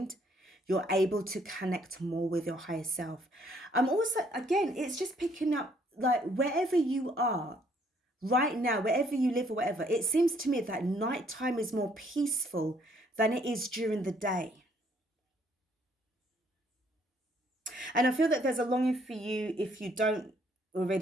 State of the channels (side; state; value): both; normal; correlation 0.65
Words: You're able to connect more with your higher self. I'm also, again, it's just picking up, like, wherever you are right now, wherever you live or whatever, it seems to me that nighttime is more peaceful than it is during the day. And I feel that there's a longing for you, if you don't